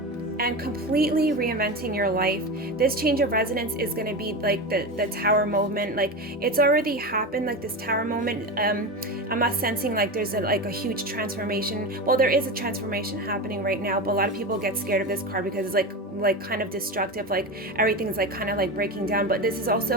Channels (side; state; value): both; normal; correlation 0.22